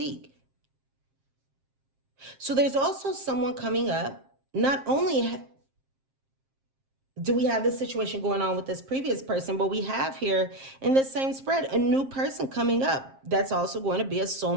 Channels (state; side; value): late; left; 7.5 ms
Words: So there's also someone coming up. Not only do we have this situation going on with this previous person, but we have here in this same spread a new person coming up that's also going to be a